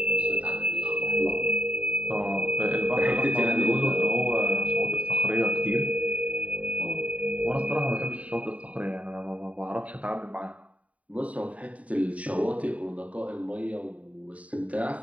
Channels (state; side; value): late; left; 0.068 ms